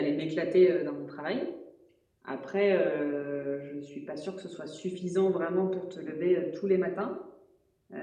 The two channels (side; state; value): both; identical; correlation 1.00